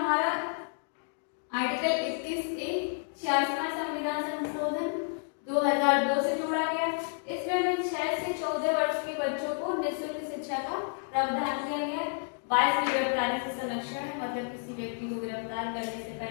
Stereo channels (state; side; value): silent; right; 57 dB below the other